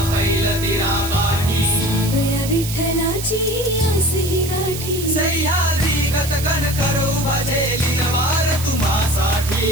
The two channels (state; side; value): noise; right; hiss, 8 dB below the sound